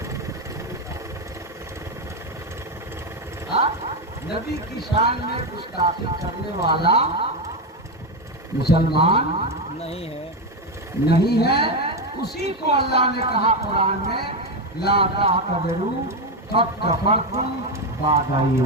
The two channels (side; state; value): both; normal; correlation 0.09